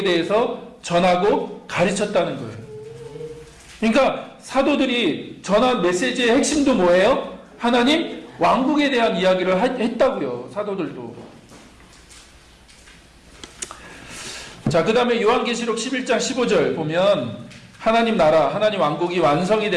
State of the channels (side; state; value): both; identical; correlation 1.00